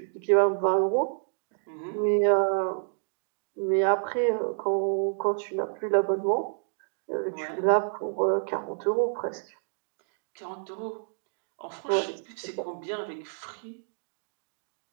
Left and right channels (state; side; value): silent; left; digital silence